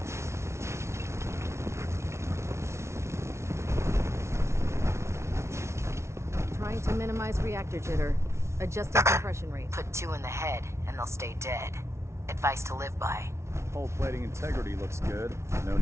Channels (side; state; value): left; late; 0.13 ms